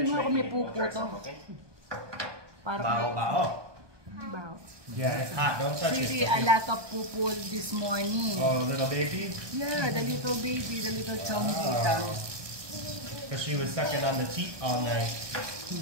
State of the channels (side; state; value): left; late; 1.2 ms